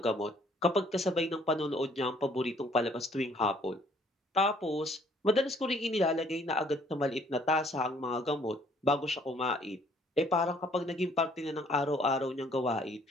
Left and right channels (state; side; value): normal; both; correlation 0.61